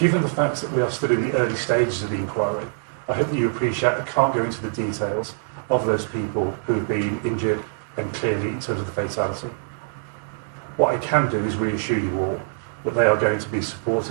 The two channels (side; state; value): left; silent; digital silence